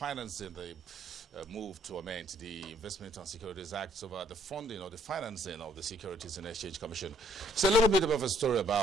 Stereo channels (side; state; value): both; normal; correlation 0.64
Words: the move to amend the Investment and Securities Act over the funding or the financing of the Securities and Exchange Commission. It's a little bit of a story